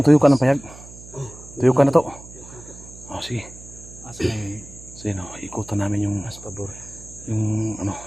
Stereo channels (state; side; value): noise; right; hum, 18 dB below the sound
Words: tuyo ka ng payag. Tuyo ka na to. Oh, sige. Asa na yun? Sige no, ikutan namin yung Mas pabor.